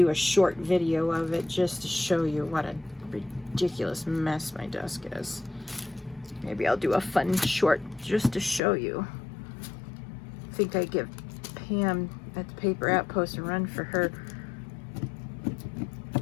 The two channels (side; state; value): right; drops out; at 8.6 s